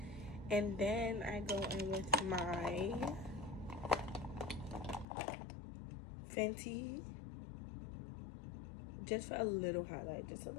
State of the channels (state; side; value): drops out; right; at 5.1 s